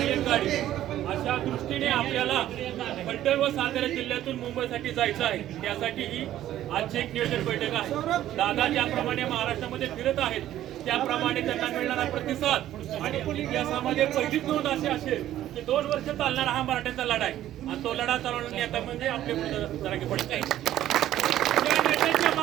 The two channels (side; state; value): left; quieter; 12.8 dB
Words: एक गाडी, अशा दृष्टीने आपल्याला फलटण व सातारा जिल्ह्यातून मुंबईसाठी जायचं आहे. त्यासाठी ही आजची एक नियोजन बैठक आहे. दादा ज्याप्रमाणे महाराष्ट्रामध्ये फिरत आहेत त्याप्रमाणे त्यांना मिळणारा प्रतिसाद आणि इतिहासामध्ये पहिलीच नोंद अशी असेल की 2 वर्ष चालणारा हा मराठ्यांचा लढा आहे आणि तो लढा चालवण्याचा नेता म्हणजे आपले जरांगे पाटील. या नेत्यांच्या